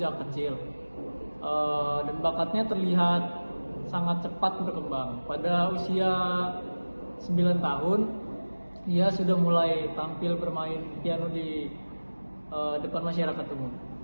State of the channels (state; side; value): inverted; both; correlation -1.00